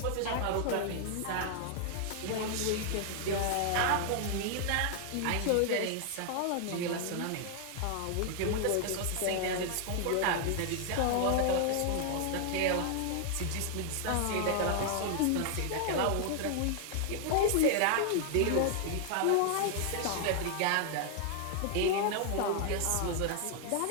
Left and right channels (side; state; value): both; different; correlation 0.00